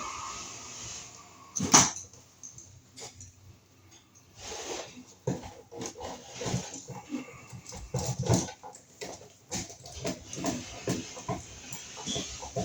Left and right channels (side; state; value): both; identical; correlation 1.00